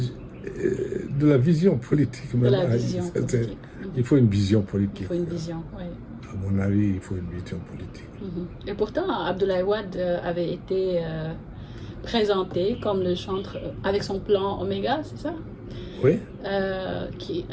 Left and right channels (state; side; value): identical; both; correlation 1.00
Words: De la vision politique. Il faut une vision politique. Il faut une vision, oui. À mon avis, il faut une vision politique. Et pourtant, Abdoulaye Wade avait été présenté comme le chantre avec son plan Oméga, c'est ça? Oui.